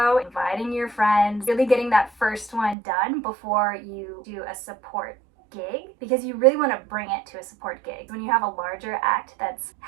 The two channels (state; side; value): drops out; left; at 2.8 s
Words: inviting your friends, really getting that first one done before you do a support gig, because you really want to bring it to a support gig. When you have a larger act that's